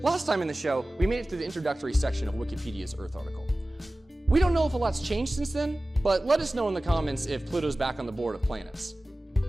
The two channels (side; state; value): both; normal; correlation 0.97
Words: Last time in the show, we made it through the introductory section of Wikipedia's Earth article. We don't know if a lot's changed since then, but let us know in the comments if Pluto's back on the board of planets.